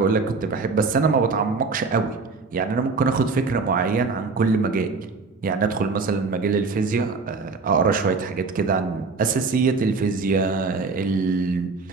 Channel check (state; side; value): quieter; left; 4.3 dB